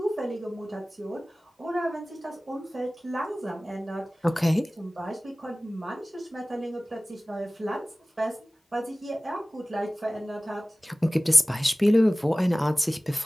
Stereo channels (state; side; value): normal; both; correlation 0.98